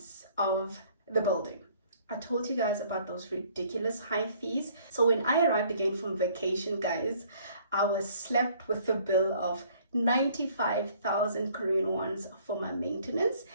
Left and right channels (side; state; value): both; inverted; correlation -0.58